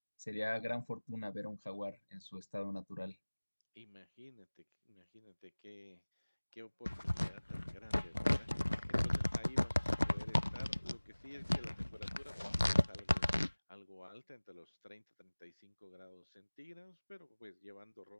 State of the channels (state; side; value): inverted; both; correlation -1.00